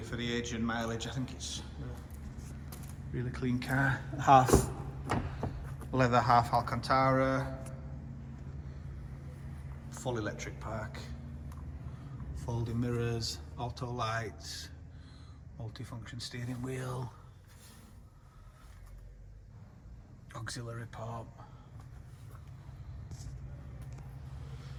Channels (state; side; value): identical; both; correlation 1.00